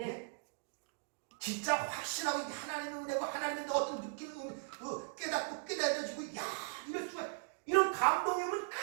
진짜 확신하고 하나님의 은혜고 하나님의 어떤 느낌을 깨닫고 깨달아지고 야 이럴 수가 이런 감동이면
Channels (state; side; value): silent; left; digital silence